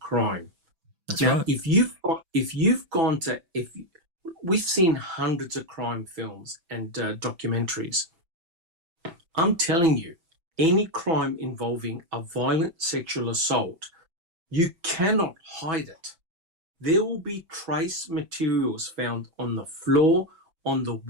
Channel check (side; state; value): left; late; 6.0 ms